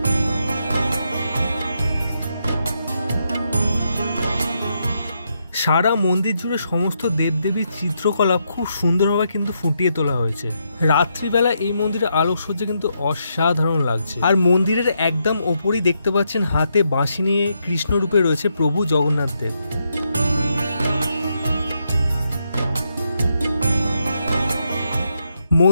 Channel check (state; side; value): inverted; both; correlation -0.80